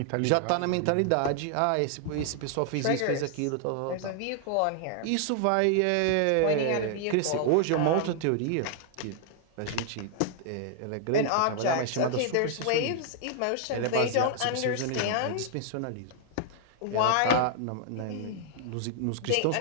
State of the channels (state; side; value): different; both; correlation 0.00